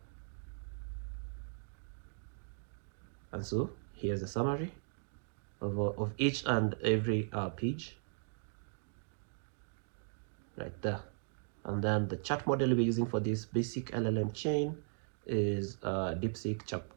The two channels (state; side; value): silent; left; digital silence